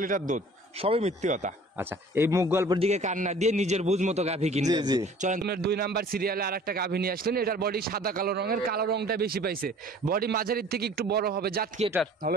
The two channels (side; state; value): both; normal; correlation 0.49